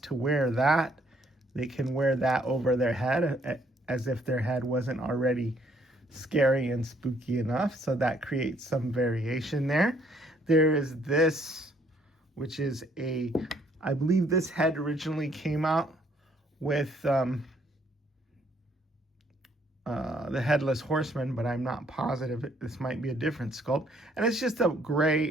to wear that, they can wear that over their head as if their head wasn't already scary and spooky enough. So that creates some variation there. There is this, which is I believe this head originally came out with the Headless Horseman, but I'm not positive. This might be a different sculpt. And it's just a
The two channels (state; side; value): normal; both; correlation 0.66